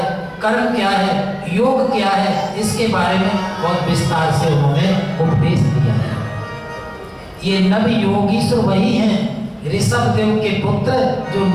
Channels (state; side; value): identical; both; correlation 1.00